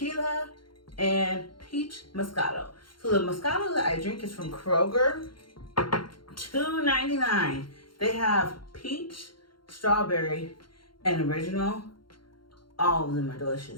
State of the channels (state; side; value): late; right; 0.73 ms